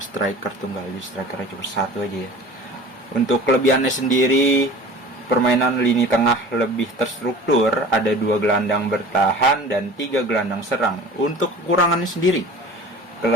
tunggal. Jadi strikernya cuma 1 aja ya. Untuk kelebihannya sendiri, permainan lini tengah lebih terstruktur, ada 2 gelandang bertahan dan 3 gelandang serang. Untuk kekurangannya sendiri,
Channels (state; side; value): normal; both; correlation 0.41